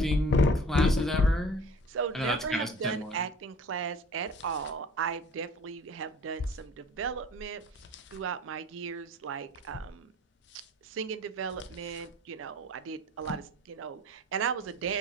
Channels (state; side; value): normal; both; correlation 0.46